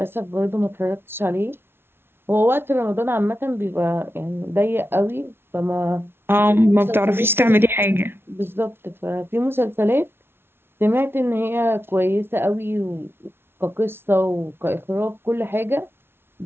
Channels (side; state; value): left; late; 0.11 ms